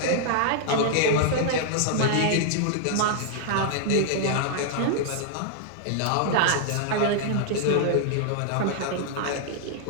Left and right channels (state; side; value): different; both; correlation -0.01